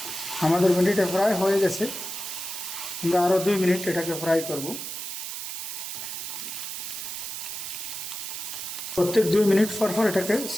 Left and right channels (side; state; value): right; noise; hiss, 6 dB below the sound